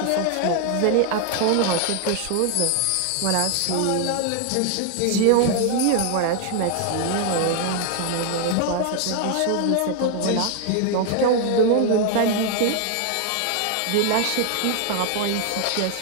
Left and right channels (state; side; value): different; both; correlation 0.00